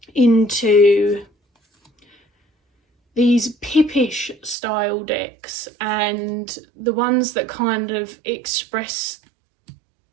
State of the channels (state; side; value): drops out; left; at 4.5 s